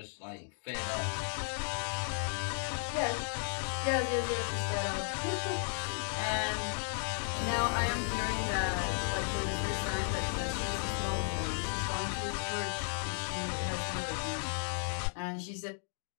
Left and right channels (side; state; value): right; silent; 55 dB below the other